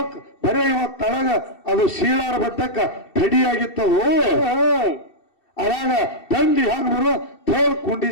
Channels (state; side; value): late; right; 2.7 ms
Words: ಬರೀ ಇವತ್ ತಳಗ ಅದು ಶೀಳಾರ ಬಟ್ಟಕ್ಕ ಥಡಿ ಆಗಿತ್ತದು. ಅವಾಗ ಥಂಡಿ ಹಂಗ ಬರುವ ಥೋದ್ ಕುಂಡಿ